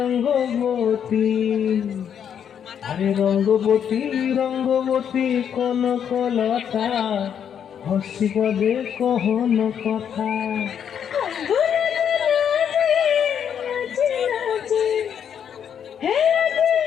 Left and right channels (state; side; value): quieter; right; 8.4 dB